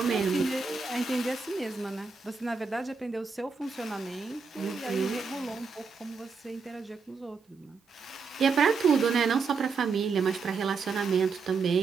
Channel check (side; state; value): left; quieter; 4.9 dB